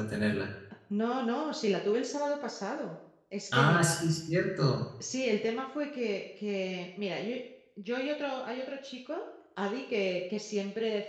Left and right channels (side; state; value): both; identical; correlation 1.00